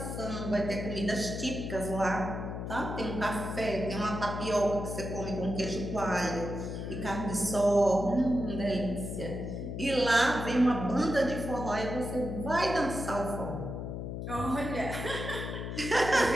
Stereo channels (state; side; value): noise; left; hum, 5 dB below the sound